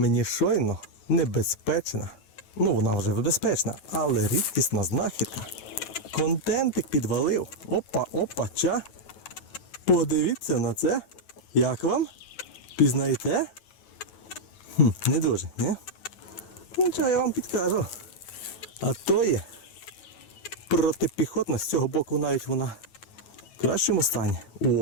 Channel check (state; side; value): late; right; 9.2 ms